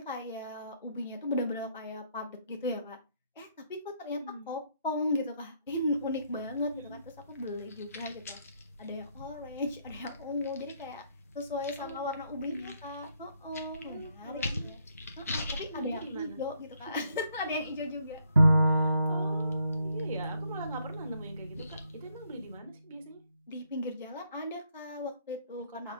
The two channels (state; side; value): inverted; both; correlation -0.72